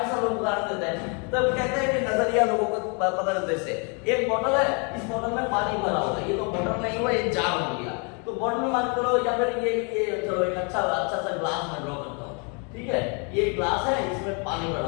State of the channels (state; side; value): quieter; right; 35.8 dB